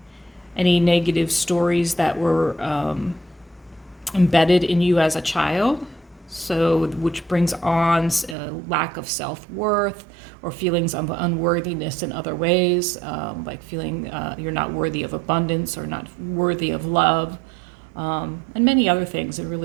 any negative stories that were embedded in you as a child, so which brings on a lack of self-worth or feelings of unworthiness in other ways, like feeling you're not worthy of abundance or not worthy of love, and many other things. It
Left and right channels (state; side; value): drops out; left; at 8.3 s